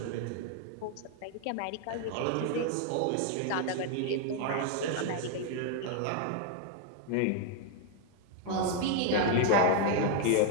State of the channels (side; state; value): both; different; correlation 0.01